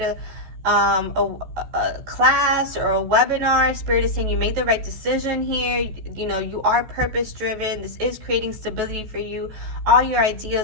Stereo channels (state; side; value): late; left; 14 ms